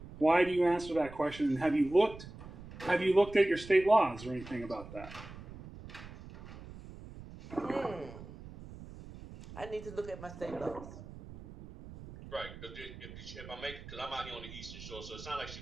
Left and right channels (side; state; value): right; noise; rumble, 14 dB below the sound